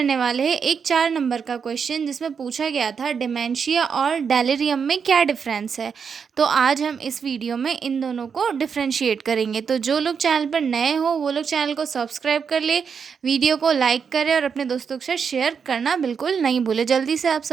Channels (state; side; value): quieter; left; 6.4 dB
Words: वाले हैं एक 4 नंबर का क्वेश्चन, जिसमें पूछा गया था डिमेंशिया और डेलिरियम में क्या डिफरेंस है। तो आज हम इस वीडियो में इन दोनों को डिफ्रेंशिएट करेंगे। तो जो लोग चैनल पर नए हो वो लोग चैनल को सब्सक्राइब कर ले, वीडियो को लाइक करें और अपने दोस्तों के साथ शेयर करना बिल्कुल नहीं भूलें। जल्दी से आप